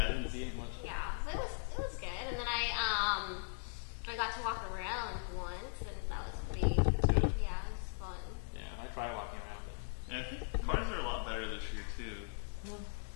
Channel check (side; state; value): right; silent; digital silence